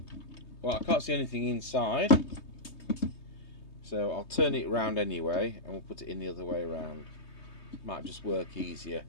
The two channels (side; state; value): right; late; 3.2 ms